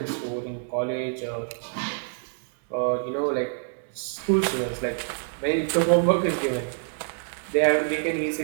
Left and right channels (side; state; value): left; silent; digital silence